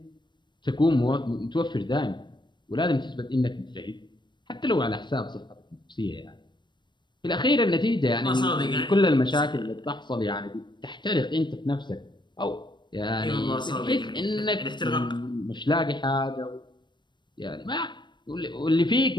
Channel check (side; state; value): right; late; 0.22 ms